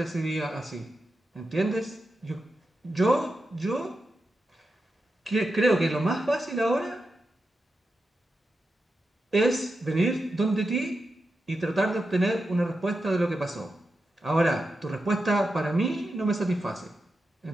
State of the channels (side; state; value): both; normal; correlation 0.89